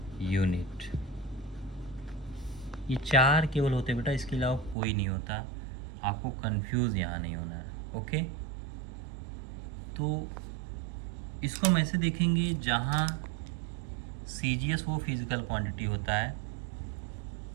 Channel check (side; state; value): left; drops out; at 4.8 s